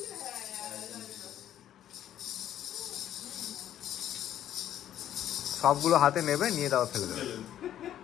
সবগুলো হাতে নেবে, নিয়ে দাও ফেলে দেবে।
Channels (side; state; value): right; quieter; 11.3 dB